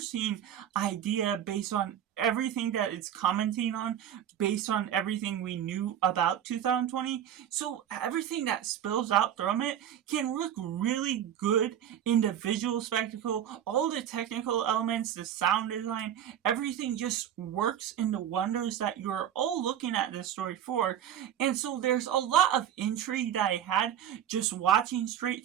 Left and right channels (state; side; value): quieter; left; 10.1 dB